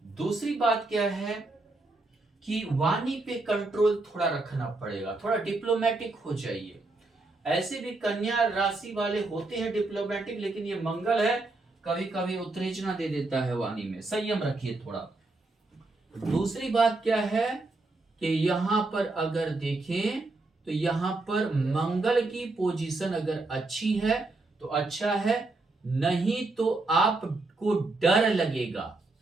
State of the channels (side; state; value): left; quieter; 3.2 dB